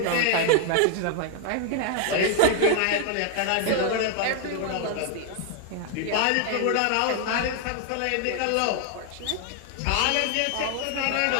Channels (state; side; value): different; both; correlation 0.00